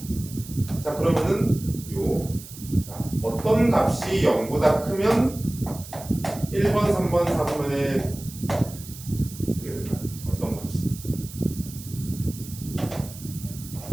자, 그러면은 자, 어떤 값이 0보다 크면 1번, 3번, 4번에 어떻게 될까요? 어떤 값이?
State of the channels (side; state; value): right; noise; hiss, 15 dB below the sound